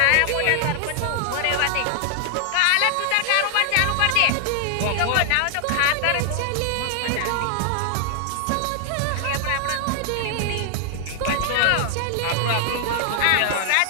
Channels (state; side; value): different; both; correlation 0.00